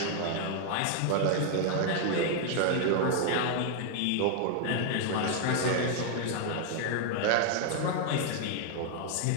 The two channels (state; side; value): different; both; correlation 0.00